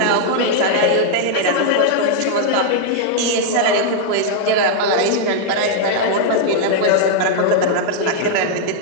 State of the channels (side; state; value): both; different; correlation -0.01